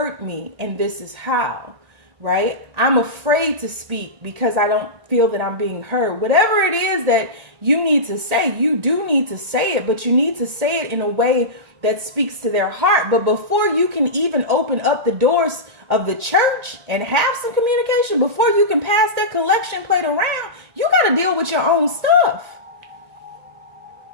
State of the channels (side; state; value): left; late; 2.1 ms